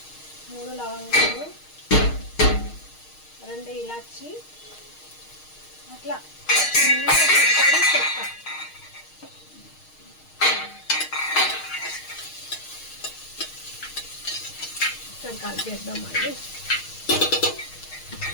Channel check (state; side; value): late; right; 6.5 ms